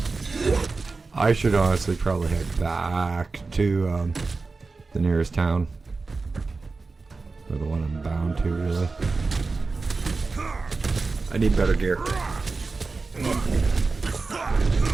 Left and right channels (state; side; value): quieter; left; 4.0 dB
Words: I should honestly probably head back to the nearest town. Or the one I'm bound to, really. I need better gear.